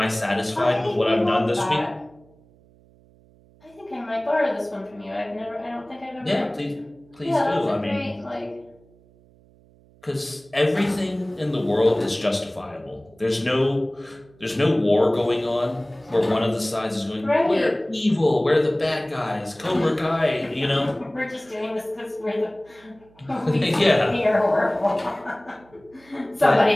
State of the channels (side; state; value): right; noise; hum, 29 dB below the sound